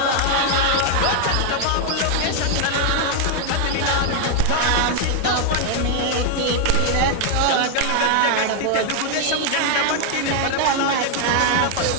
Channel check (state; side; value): different; both; correlation 0.00